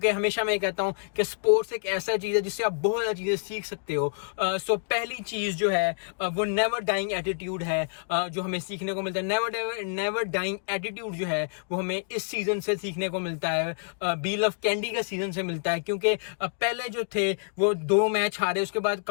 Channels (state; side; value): silent; right; digital silence